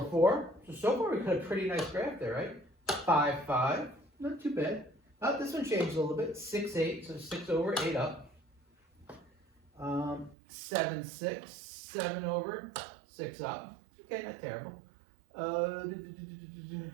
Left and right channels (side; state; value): left; drops out; at 10.4 s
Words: 4. So far we got a pretty nice graph there, right? 5, 5. Not too bad. Oh, this one changed a little bit. 6, 8. So 6 over, 8 up. 7, 6. 7 over, 6 up. Okay, not terrible.